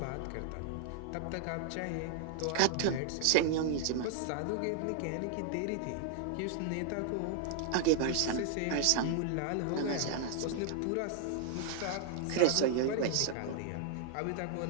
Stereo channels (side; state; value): both; different; correlation 0.00